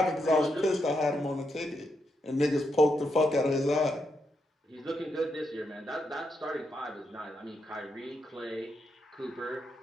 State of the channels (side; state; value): both; normal; correlation 0.82